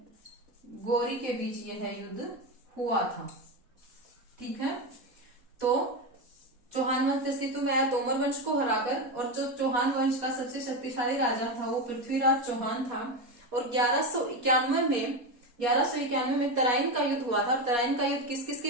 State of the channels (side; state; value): left; late; 4.2 ms